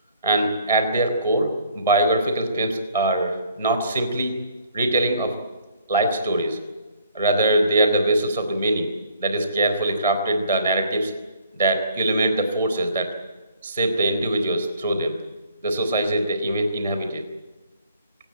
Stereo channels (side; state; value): both; inverted; correlation -0.60